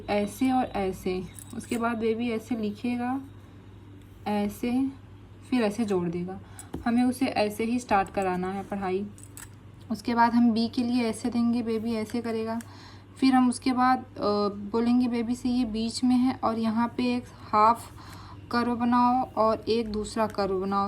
ऐसे और ऐसे। उसके बाद बेबी ऐसे लिखेगा, ऐसे, फिर ऐसे जोड़ देगा। हमें उसे ऐसे ही स्टार्ट कराना है पढ़ाई। उसके बाद हम B के लिए ऐसे देंगे, बेबी ऐसे करेगा। फिर हम उसके बाद बोलेंगे बेबी से ये बीच में है और यहाँ पे एक हाफ कर्व बनाओ और एक दूसरा कर्व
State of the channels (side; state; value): both; identical; correlation 1.00